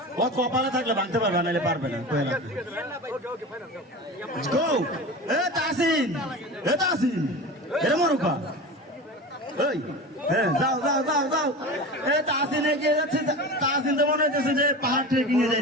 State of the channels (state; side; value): normal; both; correlation 0.30